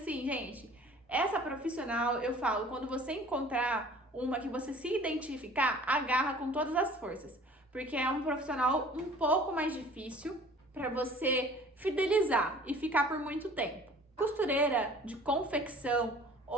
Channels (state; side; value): normal; both; correlation 0.48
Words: gente. Essa profissional, eu falo, quando você encontrar uma que você se identificar, agarra com todas as forças, porque é um profissional um pouco mais difícil para você fidelizar e ficar por muito tempo. Costureira de confecção